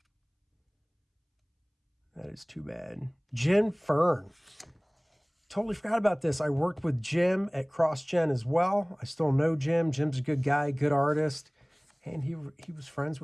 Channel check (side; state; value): both; identical; correlation 1.00